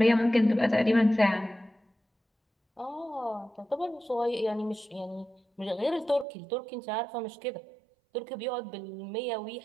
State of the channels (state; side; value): drops out; left; at 6.2 s